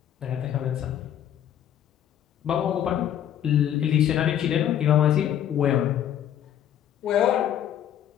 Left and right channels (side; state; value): right; quieter; 10.5 dB